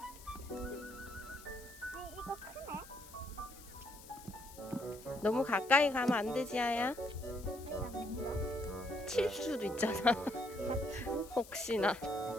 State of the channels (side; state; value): left; noise; hiss, 18 dB below the sound